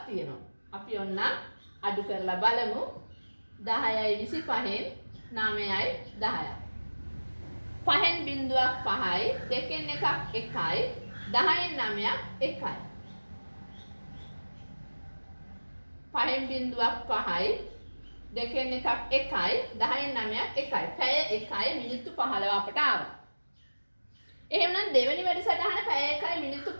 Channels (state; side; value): inverted; both; correlation -1.00